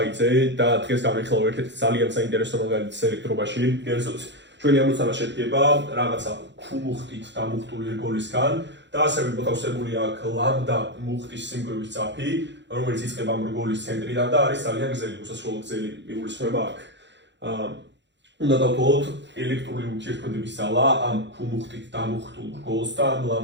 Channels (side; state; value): left; late; 0.52 ms